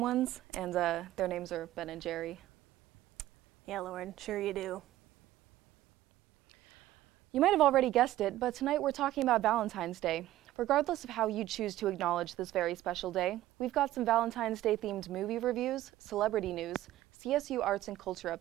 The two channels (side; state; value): left; quieter; 14.6 dB